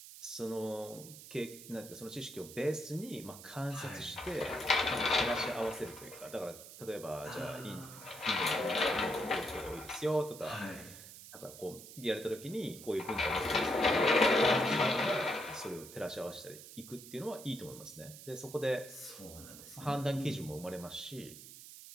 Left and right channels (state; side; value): noise; right; hiss, 15 dB below the sound